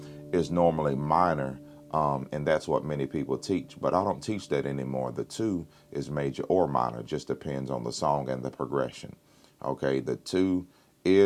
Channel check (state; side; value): identical; both; correlation 1.00